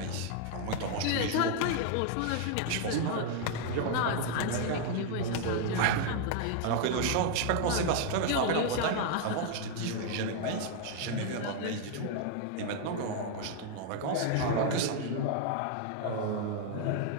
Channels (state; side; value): different; both; correlation 0.00